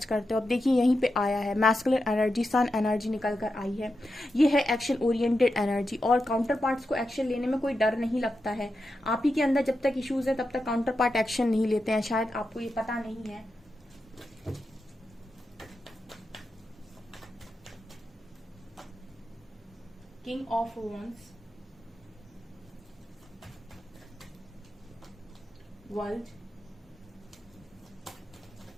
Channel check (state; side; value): normal; both; correlation 0.88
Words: करते हो। अब देखिए यहीं पे आया है मैस्कुलिन एनर्जी, सन एनर्जी निकल कर आई है। ये है एक्शन ओरिएंटेड एनर्जी, और काउंटर पार्ट्स को एक्शन लेने में कोई डर नहीं लगता है। आप ही के अंदर जब तक इश्यूज है तब तक काउंटर पार्ट एक्शन नहीं लेते हैं, शायद आपको ये पता नहीं है। King of wands, world,